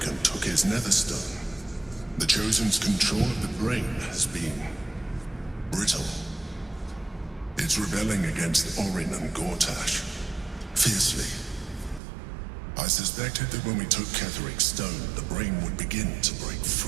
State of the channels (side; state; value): left; drops out; at 12.0 s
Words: and took his netherstone, the Chosen's control of the brain has been brittle. It's rebelling against Orin and Gortash fiercely. I suspected that when we took Ketheric's stone, the brain would begin to break